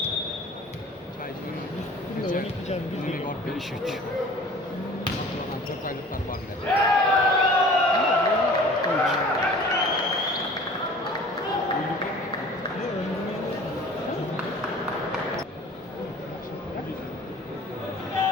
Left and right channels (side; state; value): both; normal; correlation 0.45